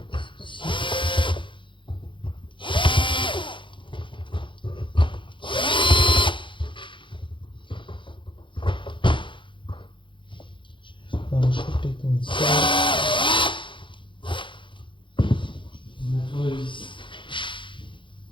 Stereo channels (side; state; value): right; late; 0.24 ms